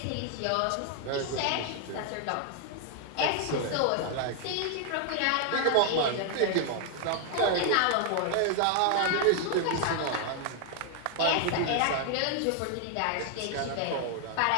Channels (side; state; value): both; different; correlation 0.00